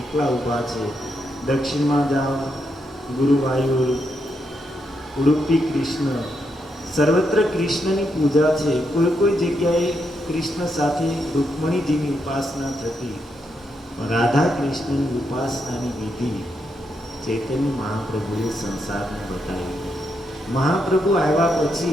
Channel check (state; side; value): normal; both; correlation 0.81